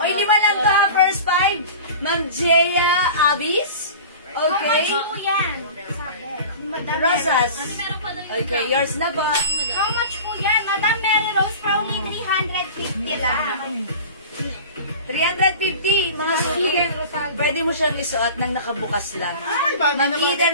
5 lang to, ha? First 5. Ma'am Jaya Abis. Okay. How much po yan? Sabi. Madam Rosas. Okay, yours na po. How much po yan? Madam Mary Rose for only 350 lang. 350, mga suki. Pwede mo siyang isuot nang nakabukas lang. Ay, bago na Ma'am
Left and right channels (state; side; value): inverted; both; correlation -0.37